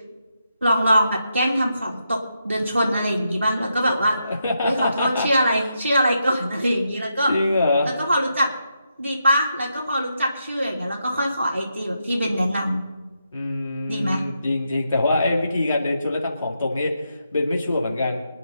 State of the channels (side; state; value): both; inverted; correlation -0.82